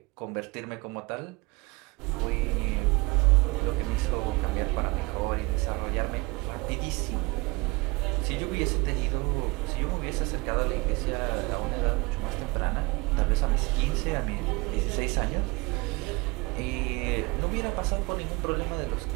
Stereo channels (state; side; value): quieter; left; 25.4 dB